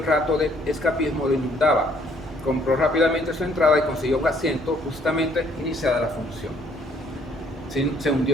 rato de escapismo lo inundaba. Compró rápidamente su entrada y consiguió un asiento justamente iniciada la función. Se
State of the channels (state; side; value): normal; both; correlation 0.64